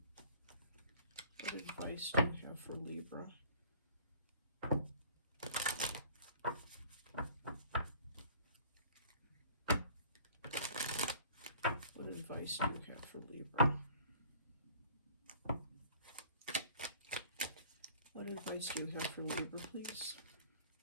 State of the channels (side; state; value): both; inverted; correlation -0.49